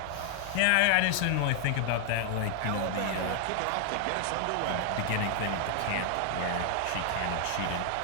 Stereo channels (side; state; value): both; different; correlation 0.00